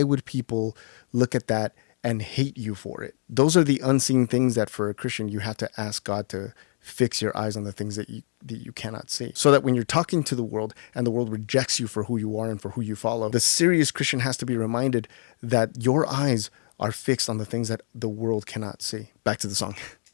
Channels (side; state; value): right; silent; digital silence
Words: would people look at that and hate you for it? Those are the unseen things that for a Christian, you have to ask God to fix your eyes on the things that you cannot see. So that when you're talking to the world and the world rejects you for who you are and for who you follow, the serious Christian has to be reminded that your eyes are fixed on the things that the world cannot see. Back to the song.